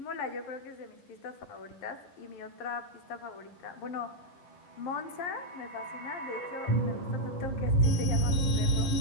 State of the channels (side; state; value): right; late; 11 ms